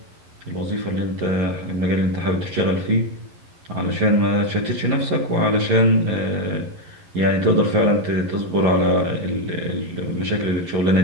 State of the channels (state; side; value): late; left; 11 ms